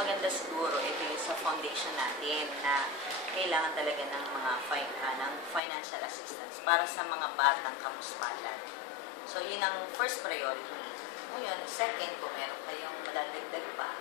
siguro ito yung sa foundation natin na kailangan talaga ng mga ng financial assistance para sa mga batang kamuspalad. So, yun ang first priority. Ngayon, second, kung meron kayong madadagdag pa,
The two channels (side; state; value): right; drops out; at 5.6 s